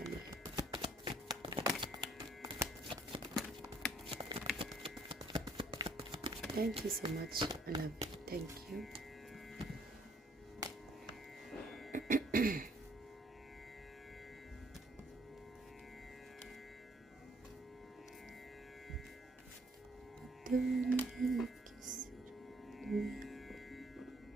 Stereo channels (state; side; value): normal; both; correlation 0.64